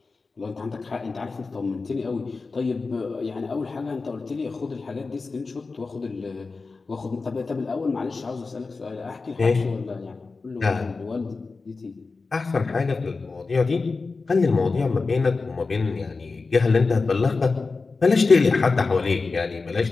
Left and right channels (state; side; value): quieter; right; 4.1 dB